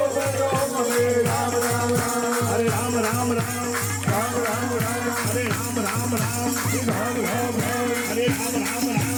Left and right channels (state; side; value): identical; both; correlation 1.00